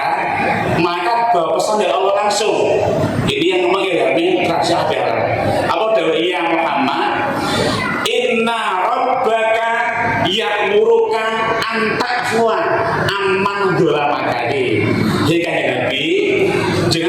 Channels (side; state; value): both; identical; correlation 1.00